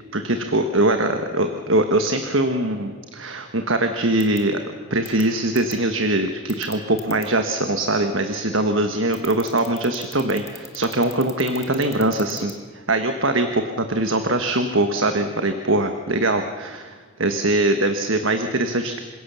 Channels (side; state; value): both; normal; correlation 0.07